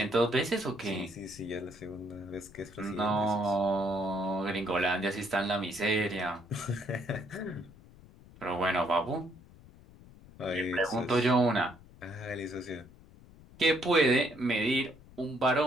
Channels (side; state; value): left; noise; rumble, 22 dB below the sound